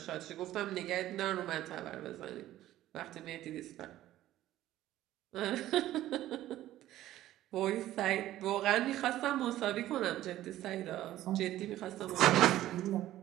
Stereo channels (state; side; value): quieter; left; 14.1 dB